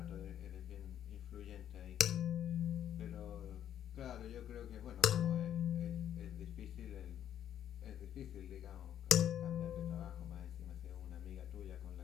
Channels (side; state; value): right; quieter; 10.3 dB